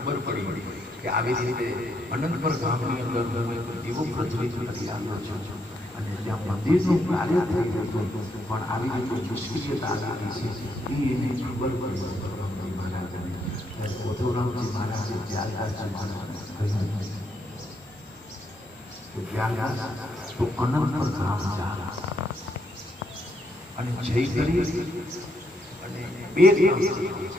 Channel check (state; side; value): normal; both; correlation 0.76